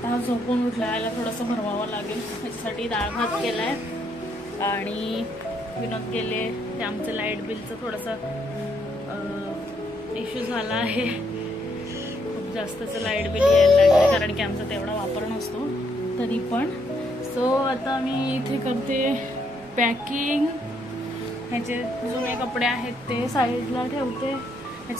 हा झोपून उठला, याला थोडंसं भरवावं लागेल. त्याच्यासाठी डाळ भात केलाय. आणि विनोद गेले. ते आमचं लाईट बिलचं थोडंसं इश्यू झाला आहे. खूप जास्तच लाईट बिल यायला लागलं, कारण की आमचा तेवढा वापर नसतो तरी पण. सो आता मी इथे करते पॅकिंग. ह्याचे जुने कपडे आहेत ते साईडला ठेवते.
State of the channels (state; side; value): normal; both; correlation 0.73